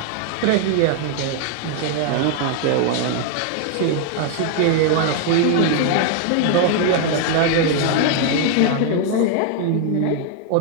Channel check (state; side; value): different; both; correlation 0.00